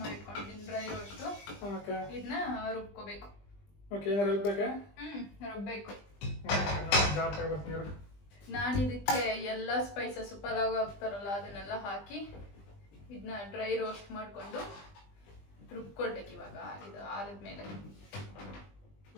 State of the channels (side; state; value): right; late; 20 ms